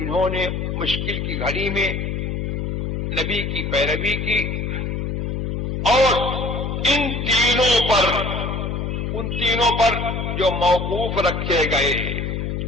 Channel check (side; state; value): left; noise; hum, 2 dB below the sound